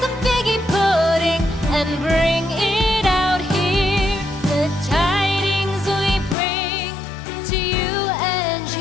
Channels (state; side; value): drops out; right; at 6.4 s